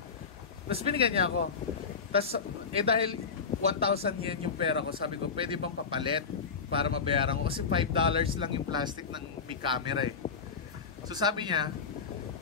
Tapos binigyan niya ako. Tapos, dahil 1,000 yen yung pera ko, sabi ko, pwede bang papalit para mabayaran ko? Kasi $5 lang yung plastic ng big camera eh. So sabi niya,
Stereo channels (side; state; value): right; quieter; 5.4 dB